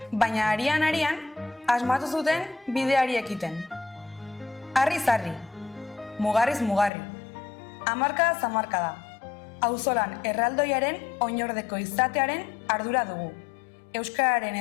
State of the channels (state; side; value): drops out; right; at 6.9 s